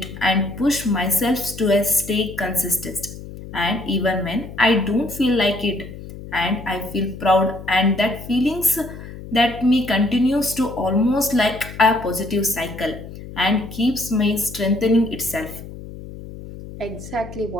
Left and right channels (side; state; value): left; noise; hum, 13 dB below the sound